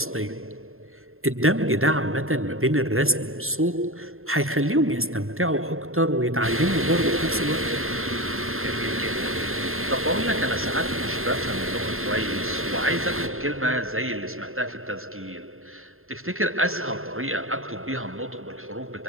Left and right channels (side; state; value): left; late; 0.61 ms